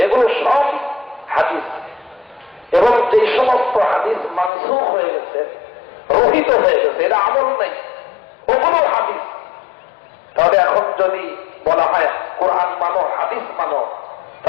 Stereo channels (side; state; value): right; drops out; at 4.5 s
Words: এগুলো সব হাদিস। এবং যে সমস্ত হাদিস মানসুখ হয়ে গেছে, রহিত হয়ে গেছে, এটা আমল নাই, ওগুলো হাদিস। তাহলে এখন যদি বলা হয় কোরআন মানো, হাদিস মানো,